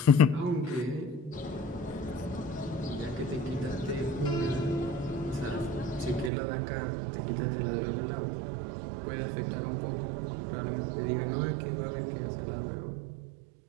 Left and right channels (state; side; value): drops out; left; at 6.3 s